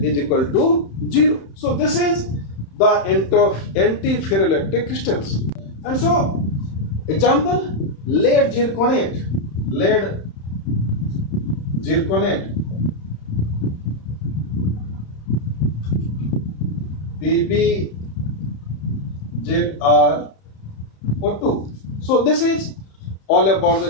is equal to 0. So this is the anti-ferroelectric crystals. And so example, lead zirconate, PbZrO2. So this is all about the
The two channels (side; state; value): right; late; 31 ms